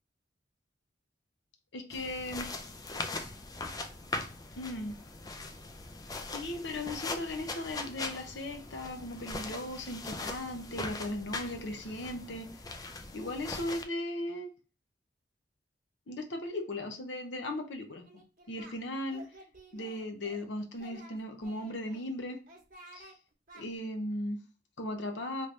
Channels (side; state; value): both; normal; correlation 0.32